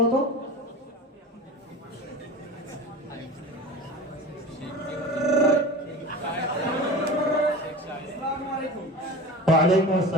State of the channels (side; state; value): both; normal; correlation 0.34